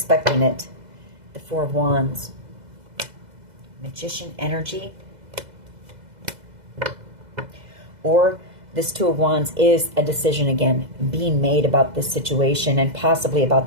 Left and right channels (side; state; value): left; late; 2.0 ms